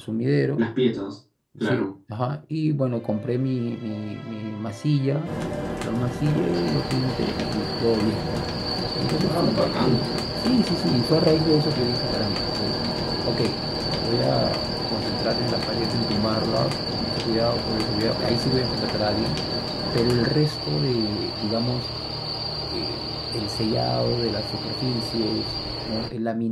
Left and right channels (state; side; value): identical; both; correlation 1.00